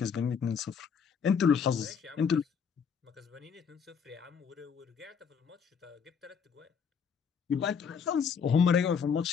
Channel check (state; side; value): quieter; right; 6.6 dB